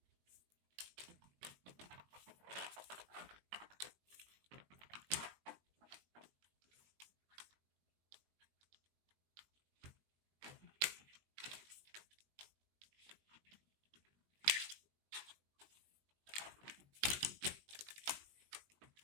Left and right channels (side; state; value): left; late; 19 ms